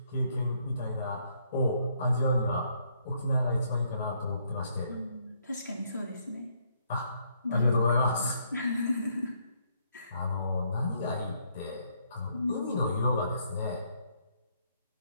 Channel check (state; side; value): inverted; both; correlation -0.71